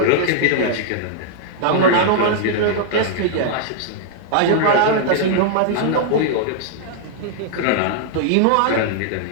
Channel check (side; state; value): both; different; correlation -0.01